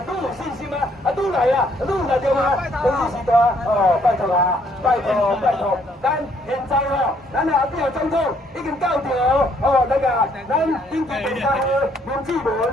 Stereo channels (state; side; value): normal; both; correlation 0.67